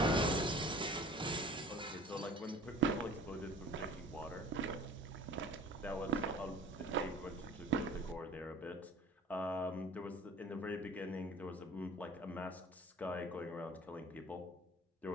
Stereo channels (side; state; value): both; normal; correlation 0.46